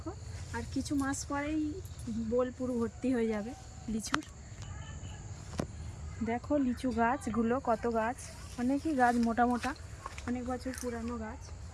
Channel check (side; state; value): both; identical; correlation 1.00